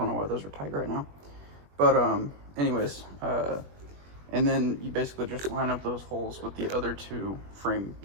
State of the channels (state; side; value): late; left; 21 ms